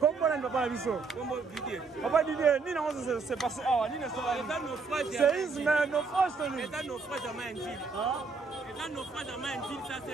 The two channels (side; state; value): left; quieter; 4.5 dB